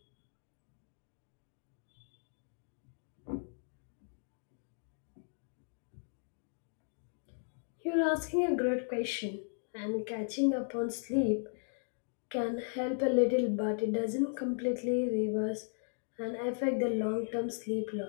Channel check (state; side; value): silent; right; digital silence